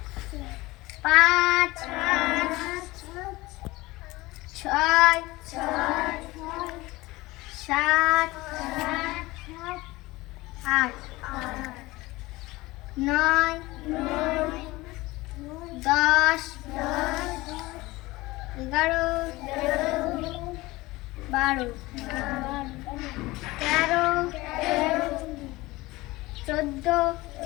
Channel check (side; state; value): right; quieter; 20.3 dB